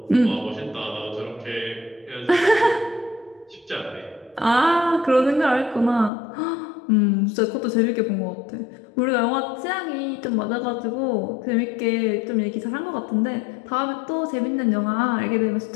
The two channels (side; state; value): right; drops out; at 6.1 s